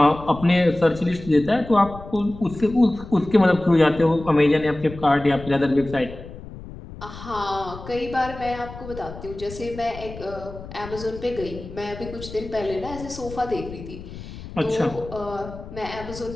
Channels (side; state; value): left; noise; rumble, 13 dB below the sound